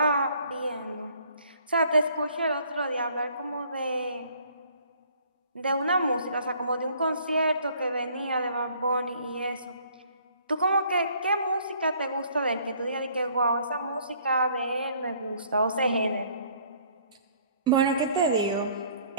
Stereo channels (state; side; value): inverted; both; correlation -0.59